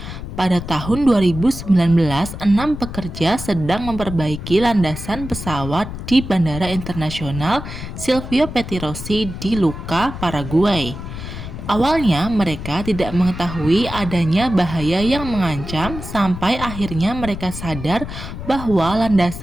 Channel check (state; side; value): noise; left; rumble, 9 dB below the sound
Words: Pada tahun 2019, 6 pekerja sedang memperbaiki landasan pesawat di Bandara Internasional Silvio Pettirossi di Lucca, Paraguay. Awalnya mereka tidak mengetahui adanya bahaya yang mengancam sampai akhirnya mereka sadar bahwa